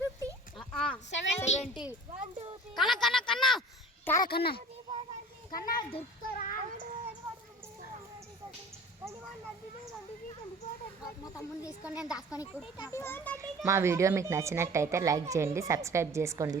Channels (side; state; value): both; normal; correlation 0.44